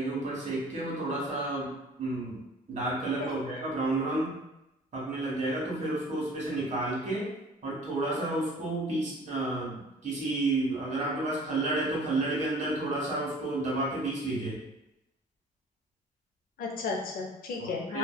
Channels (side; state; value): both; normal; correlation 0.48